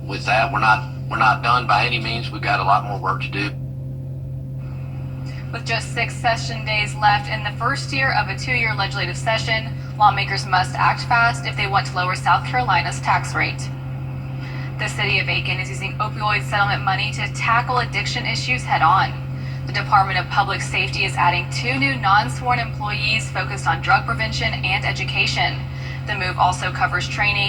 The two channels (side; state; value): both; identical; correlation 1.00